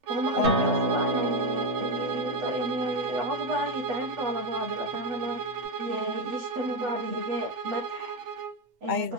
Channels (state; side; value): late; left; 8.1 ms